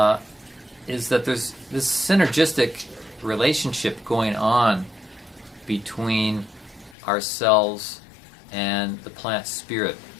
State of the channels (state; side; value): drops out; right; at 7.0 s